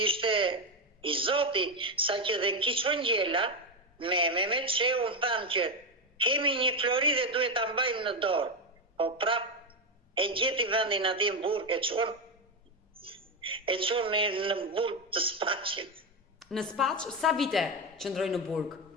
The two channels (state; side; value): normal; both; correlation 0.10